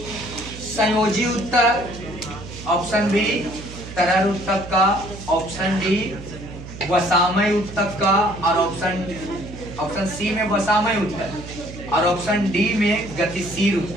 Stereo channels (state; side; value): noise; right; hum, 13 dB below the sound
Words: संयोजी उत्तर, ऑप्शन बी तरल उत्तक का, ऑप्शन डी वसामय उत्तक का और ऑप्शन सी में वसामय उत्तक और ऑप्शन डी में गतिशील